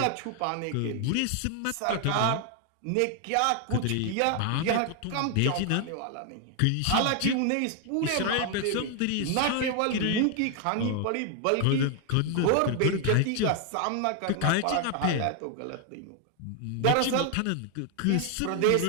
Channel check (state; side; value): different; both; correlation 0.00